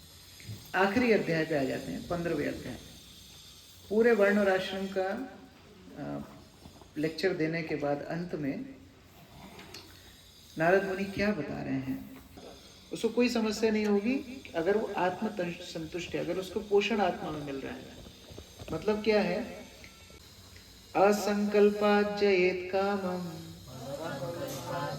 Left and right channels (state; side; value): identical; both; correlation 1.00